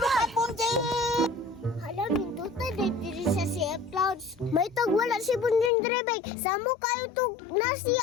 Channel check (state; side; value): drops out; right; at 5.7 s